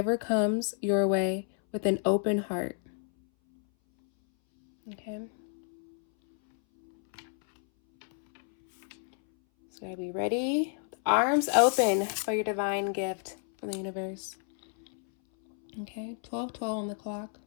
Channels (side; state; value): right; silent; 58 dB below the other